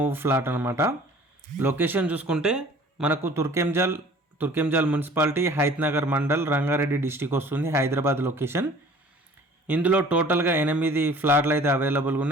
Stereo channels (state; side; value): normal; both; correlation 0.49